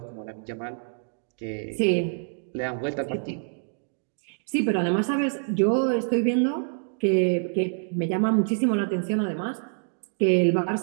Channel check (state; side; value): silent; left; digital silence